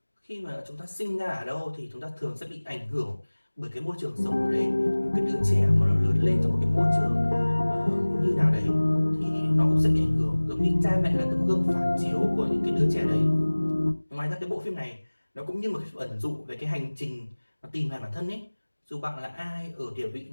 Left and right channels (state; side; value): inverted; both; correlation -1.00